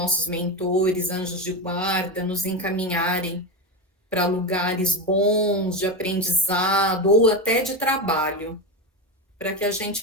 mentores, anjos de guarda, nos encaminharem para lugares bons de aprendizado ou até de trabalho, para que a gente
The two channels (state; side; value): normal; both; correlation 0.16